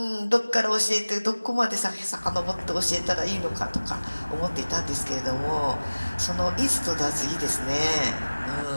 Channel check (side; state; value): both; inverted; correlation -1.00